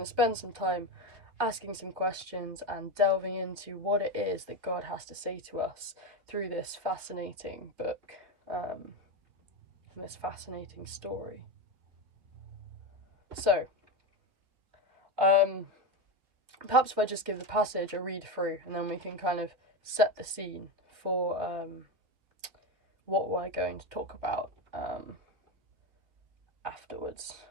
to spend some time asking some questions and delving into what it is that God has to say to us through this fascinating book, and this fascinating story. So, perhaps if I just give the passage a read through, and then we can kind of set the scene for what we're going to talk about afterwards.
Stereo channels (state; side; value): late; left; 3.6 ms